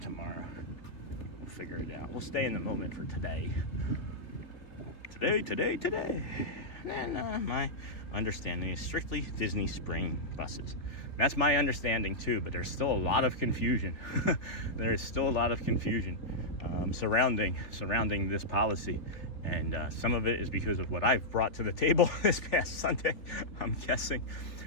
We'll figure it out. We'll stay in the moment for today. Today. then my understanding is strictly Disney Spring buses. That's my understanding too, but there's still a lot of confusion. There is still a lot of confusion surrounding this policy. And some of it is because of what I've brought to the table this past Sunday, I'm guessing,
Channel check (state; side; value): late; right; 3.5 ms